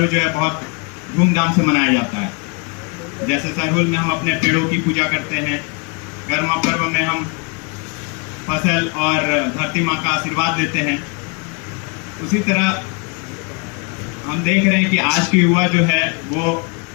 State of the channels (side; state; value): right; quieter; 34.2 dB